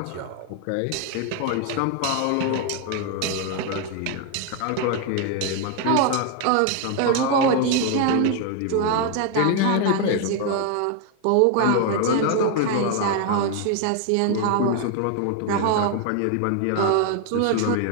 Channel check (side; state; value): both; different; correlation 0.01